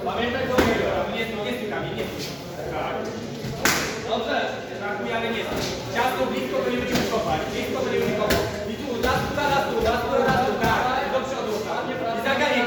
Pamiętaj do niego, nie stykamy, nie stykamy. Tak. Dobrze, brakuje, ale nie stykamy. Ciasto blisko, to nie będziemy kopać. Blisko, to nie będziemy kopać. I tu, raz tu, tak. Do przodu, tak. I zaganiaj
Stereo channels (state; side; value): identical; both; correlation 1.00